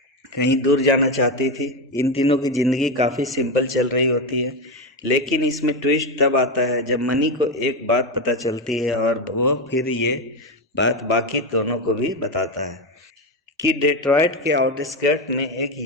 कहीं दूर जाना चाहती थी। इन तीनों की ज़िंदगी काफ़ी सिंपल चल रही होती है, लेकिन इसमें ट्विस्ट तब आता है जब मनी को एक बात पता चलती है और वो फिर ये बात बाकी दोनों को भी बताता है कि डेट्रॉयट के आउटस्कर्ट में एक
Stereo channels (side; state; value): both; normal; correlation 0.12